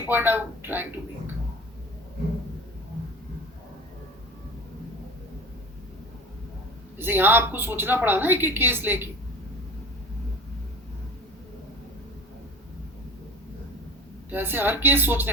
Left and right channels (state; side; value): normal; both; correlation 0.38